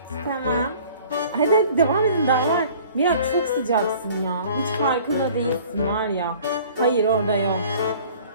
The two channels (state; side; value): inverted; both; correlation -0.50